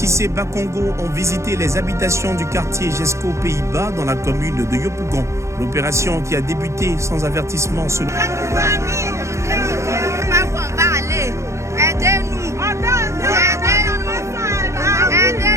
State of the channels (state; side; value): late; left; 0.14 ms